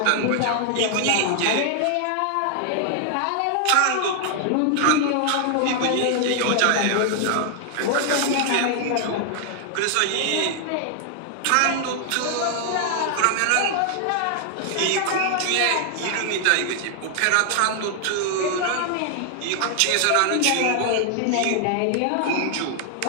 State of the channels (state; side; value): different; both; correlation 0.00